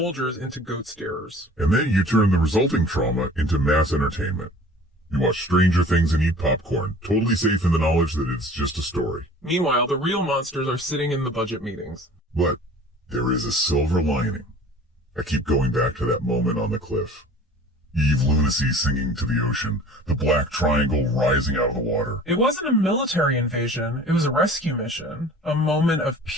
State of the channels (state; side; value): normal; both; correlation 0.45